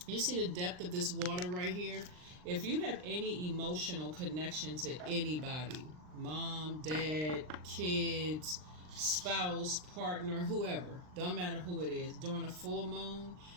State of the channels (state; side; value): late; left; 39 ms